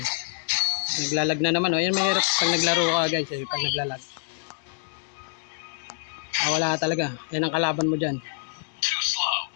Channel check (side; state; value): right; silent; digital silence